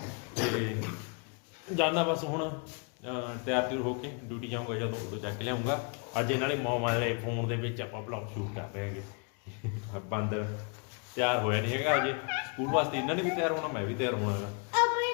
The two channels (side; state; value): right; quieter; 36.1 dB